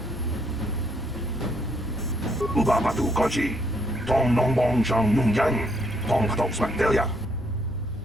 Ubabatu Kochi, Tong Nong Bong Shang Nung Yang, Tong Patok Smakdelia.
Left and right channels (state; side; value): normal; both; correlation 0.70